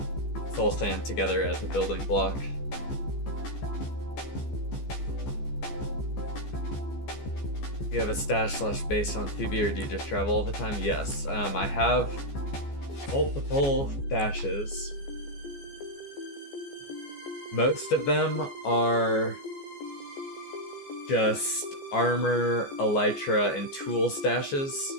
soul sand together as a building block. Do you have a stash / base on Phoebe, or do you just travel all the time? Yes, I have multiple stashes. Most of them are just armor, elytra, and tool stashes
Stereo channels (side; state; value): right; late; 14 ms